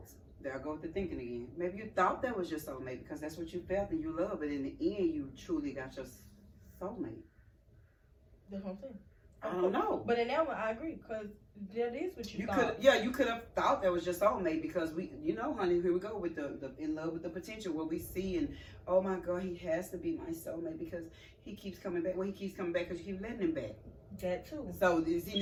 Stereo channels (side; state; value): both; identical; correlation 1.00